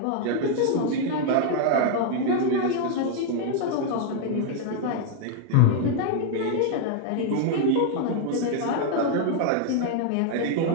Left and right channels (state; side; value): different; both; correlation 0.00